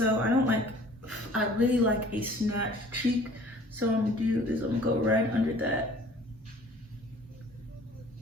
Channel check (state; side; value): normal; both; correlation 0.50